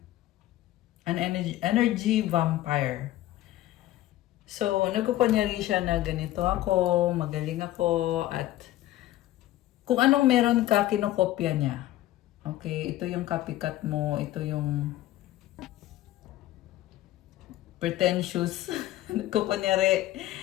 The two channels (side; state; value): right; quieter; 15.0 dB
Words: energy vampire. So, nagkukunyari siya na ganito ako, magaling ako, at kung anong meron ka, kinokopya niya. Okay, ito yung copycat mo, ito yung pretentious. Nagkukunyari